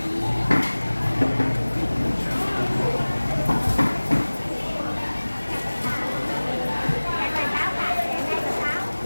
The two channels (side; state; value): both; inverted; correlation -1.00